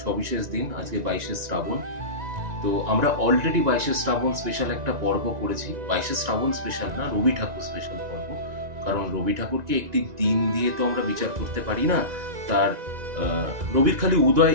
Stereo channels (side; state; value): left; late; 1.9 ms